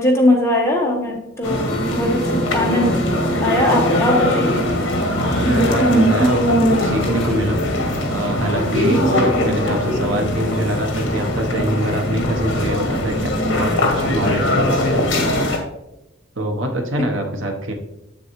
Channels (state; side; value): normal; both; correlation 0.42